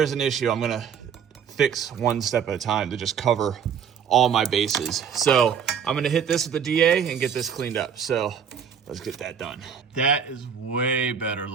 an issue. I'm gonna fix one step at a time to just cover all my bases. So I'm gonna hit this with the DA and get this cleaned up. So let's get that done. That is way better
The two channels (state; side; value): quieter; left; 7.5 dB